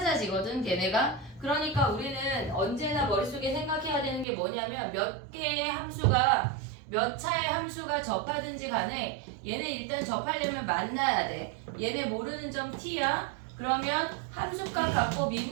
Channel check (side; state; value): left; drops out; at 4.2 s